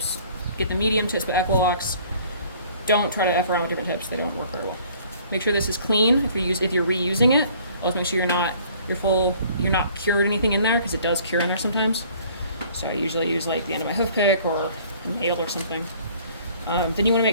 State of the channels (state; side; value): inverted; both; correlation -0.55